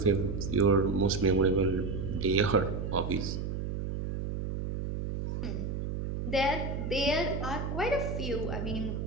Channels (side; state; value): right; noise; hum, 3 dB below the sound